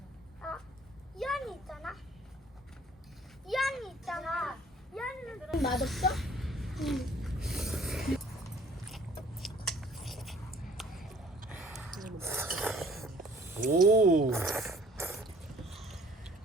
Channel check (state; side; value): normal; both; correlation 0.55